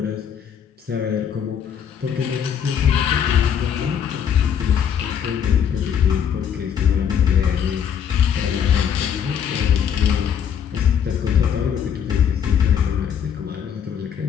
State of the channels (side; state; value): right; quieter; 8.2 dB